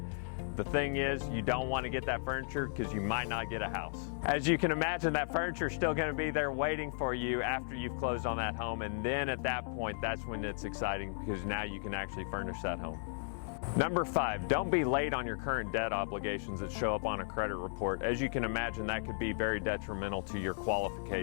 the thing is, you don't want to get that furniture because you might not get a house. As you can imagine, that furniture is still going to be there waiting for you after you've closed on that home, and then at that point, that's when it's exciting because now you can actually furnish that home. Number five, don't be late on your current debt obligations that show up on a credit report. As you can imagine, that could be very detrimental to your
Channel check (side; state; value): right; silent; 54 dB below the other